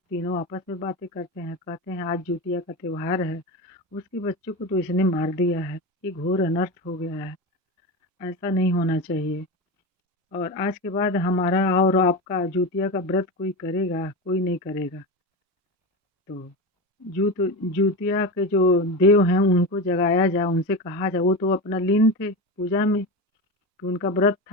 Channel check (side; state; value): both; normal; correlation 0.21